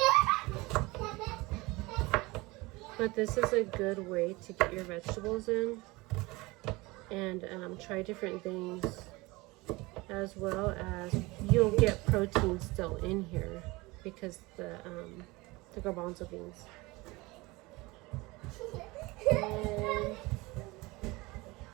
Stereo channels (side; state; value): left; quieter; 22.8 dB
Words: But this is a good way to get your vegetables in, and try different things, as well as you'll get protein still in here because the garbanzo beans. And